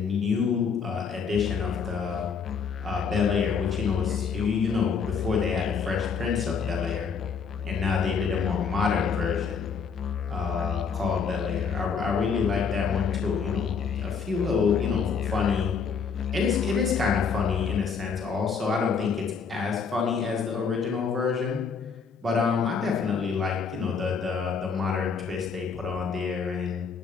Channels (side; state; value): right; quieter; 5.9 dB